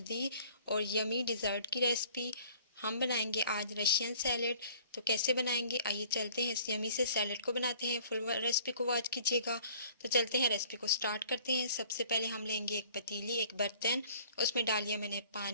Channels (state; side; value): inverted; both; correlation -0.53